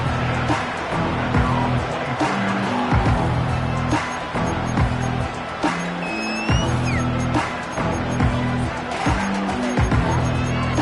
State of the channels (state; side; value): identical; both; correlation 1.00